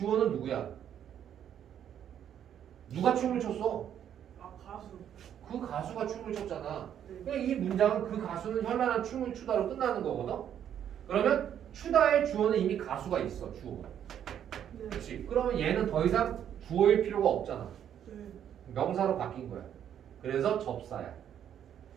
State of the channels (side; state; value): left; quieter; 9.6 dB